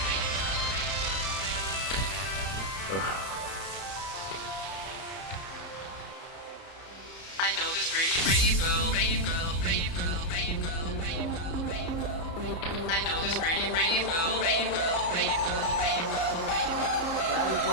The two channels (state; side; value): late; right; 31 ms